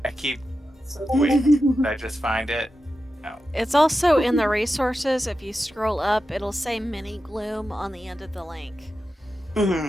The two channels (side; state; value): both; normal; correlation 0.91